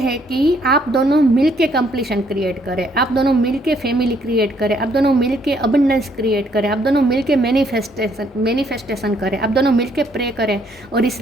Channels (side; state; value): both; normal; correlation 0.68